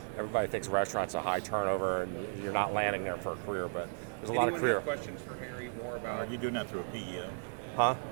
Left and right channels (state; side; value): silent; left; digital silence